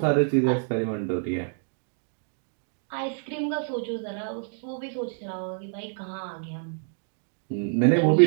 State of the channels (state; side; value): silent; left; 60 dB below the other